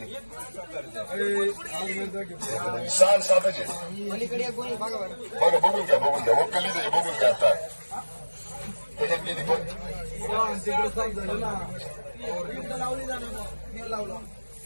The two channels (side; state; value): both; inverted; correlation -1.00